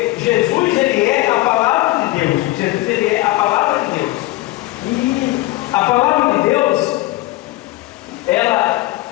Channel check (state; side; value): quieter; right; 18.8 dB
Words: Jesus, Ele é a palavra de Deus. Jesus, Ele é a palavra de Deus. E a palavra de Deus, ela,